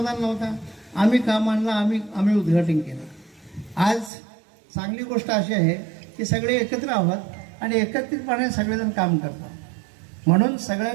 नव्हता, आम्ही काम आणलं, आम्ही उद्घाटन केलं. आज चांगली गोष्ट अशी आहे की सगळे एकत्र आहोत आणि एकत्रितपणे सगळेजण काम करतात. म्हणून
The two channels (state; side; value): drops out; left; at 4.1 s